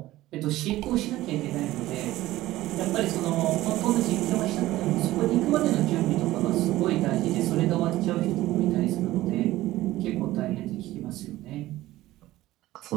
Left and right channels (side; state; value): left; quieter; 16.3 dB